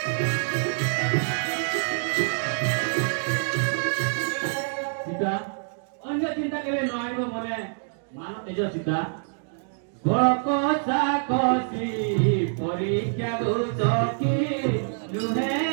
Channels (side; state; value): left; silent; digital silence